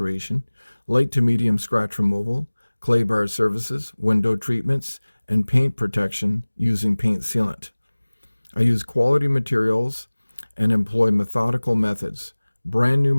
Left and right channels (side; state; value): both; inverted; correlation -1.00